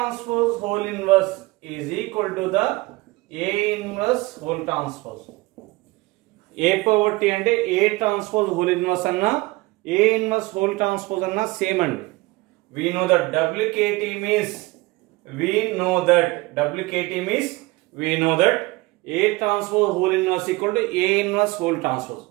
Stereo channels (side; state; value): left; quieter; 21.9 dB